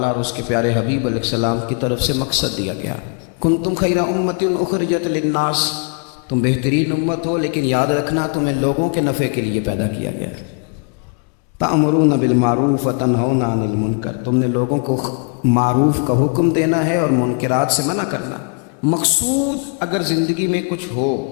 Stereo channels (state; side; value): quieter; right; 38.6 dB